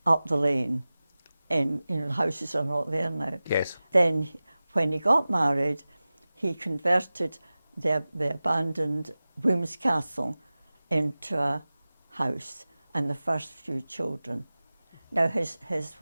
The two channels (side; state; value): both; inverted; correlation -0.97